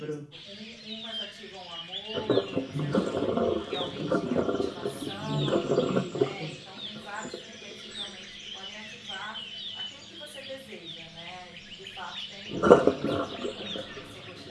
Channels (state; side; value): identical; both; correlation 1.00